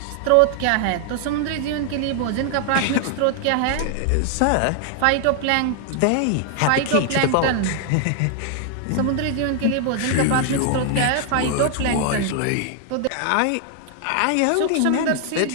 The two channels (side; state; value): both; different; correlation 0.00